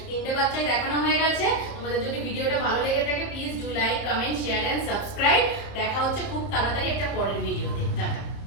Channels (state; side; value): late; right; 30 ms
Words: তিনটে বাচ্চাই দেখানো হয়ে গেছে। তোমাদের যদি ভিডিওটা ভালো লেগে থাকে please do like, comment, share and subscribe. দেখা হচ্ছে খুব তাড়াতাড়ি একটা পরের ভিডিওতে। টাটা।